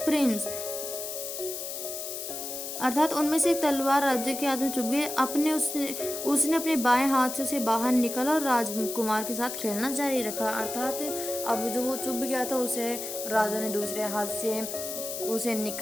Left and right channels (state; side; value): noise; left; hiss, 6 dB below the sound